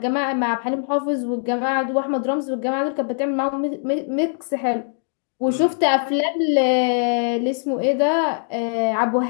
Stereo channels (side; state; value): right; silent; 59 dB below the other